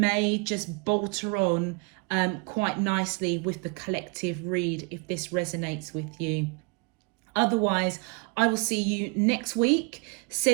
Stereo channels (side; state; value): left; quieter; 32.0 dB